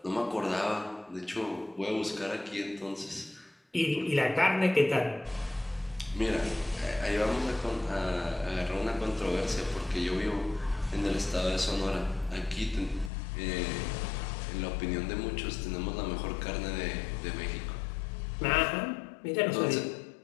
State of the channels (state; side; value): drops out; right; at 13.1 s